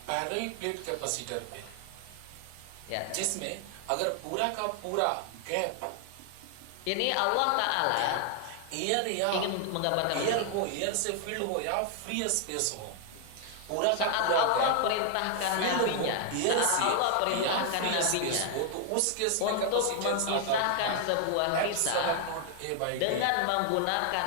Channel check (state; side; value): different; both; correlation 0.00